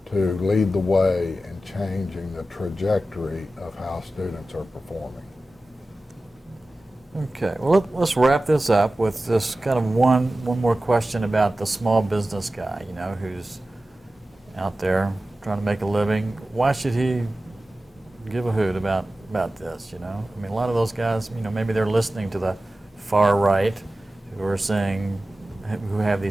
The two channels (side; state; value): both; normal; correlation 0.95